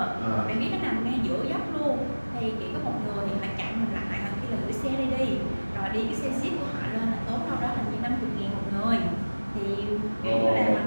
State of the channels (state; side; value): inverted; both; correlation -1.00